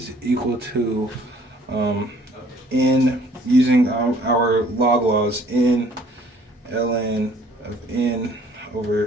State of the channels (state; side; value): normal; both; correlation 0.58